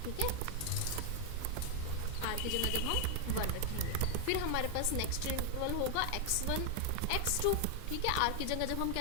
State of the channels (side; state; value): both; different; correlation 0.00